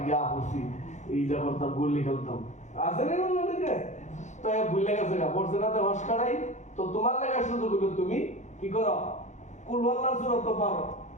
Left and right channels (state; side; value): late; right; 0.34 ms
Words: গিয়া পড়ছি, এইটা করতাম, গুলি খেলতাম, আছে না অনেকে তো ভুলে গেছে গা পড়ছে না তো হসকারাই। তো তোমার লেগা সুযোগ হলো তুমি কি করো, কুল আল্লাহর সূরা তো পারো,